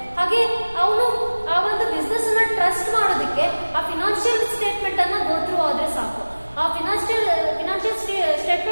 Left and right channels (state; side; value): inverted; both; correlation -1.00